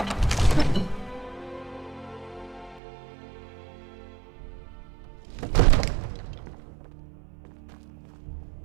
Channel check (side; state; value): left; drops out; at 2.8 s